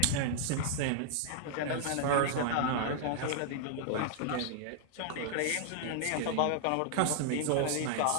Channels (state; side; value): different; both; correlation 0.00